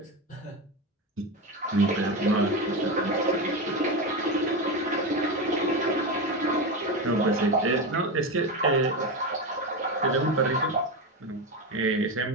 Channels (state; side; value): normal; both; correlation 0.16